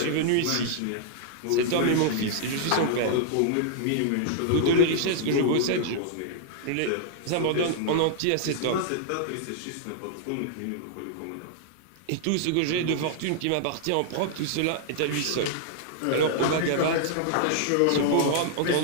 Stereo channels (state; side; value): different; both; correlation -0.01